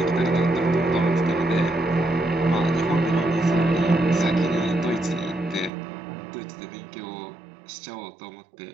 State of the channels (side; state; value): left; drops out; at 5.7 s